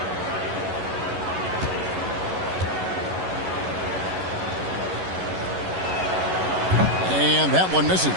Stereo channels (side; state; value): left; late; 11 ms